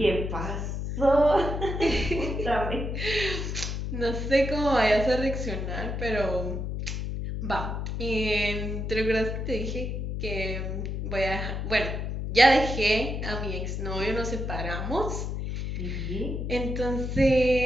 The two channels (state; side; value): noise; left; hum, 3 dB below the sound